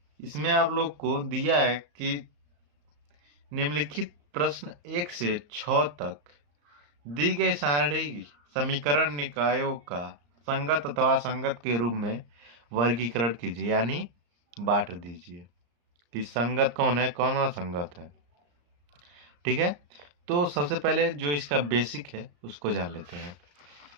इसमें आप लोग को दिया है कि निम्नलिखित प्रश्न 1 से 6 तक दी गई सारणी समीकरण निकायों का संगत अथवा असंगत के रूप में वर्गीकरण कीजिए, यानी बांट दीजिए कि संगत कौन है कौन असंगत है। ठीक है, तो सबसे पहले जो इसका बेसिक है उसको जान लेते हैं,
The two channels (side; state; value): left; late; 34 ms